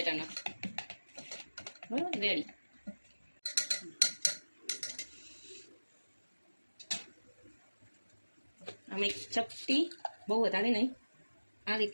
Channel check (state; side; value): inverted; both; correlation -1.00